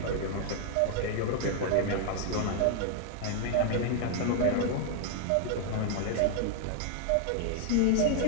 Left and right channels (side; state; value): both; different; correlation 0.00